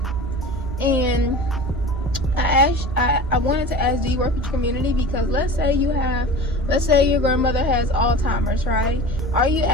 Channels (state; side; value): normal; both; correlation 0.36